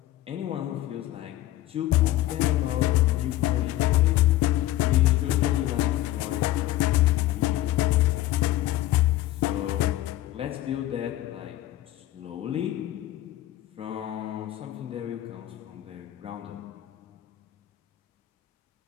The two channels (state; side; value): quieter; right; 15.1 dB